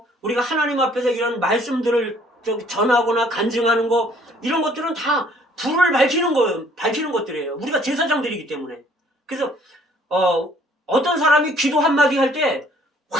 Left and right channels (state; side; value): normal; both; correlation 0.59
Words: 우리가 하나님 앞에서 이런 말씀들을 전하거나 간증하는 거, 이런 것들은 다 불을 밝히는 것들이에요. 우리가 제사장들이기 때문에. 그래서 어떤 사람이 기도 한마디 할 때